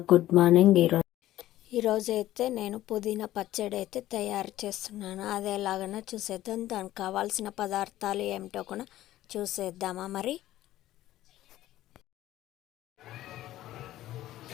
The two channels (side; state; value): right; quieter; 14.4 dB